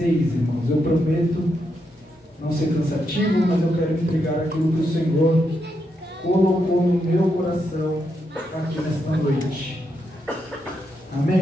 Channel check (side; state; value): both; normal; correlation 0.82